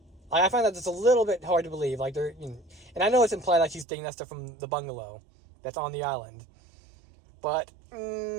I find that it's a little bit hard to believe. Like and I know it's implied that she's taking that stuff from the bungalow that's on the island, but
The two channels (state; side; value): drops out; left; at 3.9 s